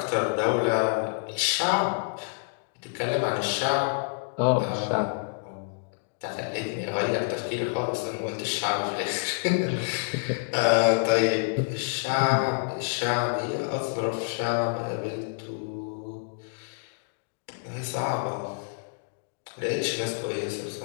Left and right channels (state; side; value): silent; right; digital silence